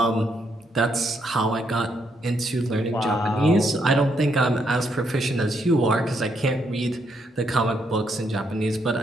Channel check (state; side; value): normal; both; correlation 0.75